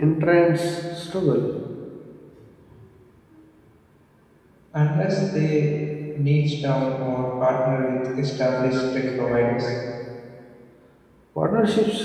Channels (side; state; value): both; identical; correlation 1.00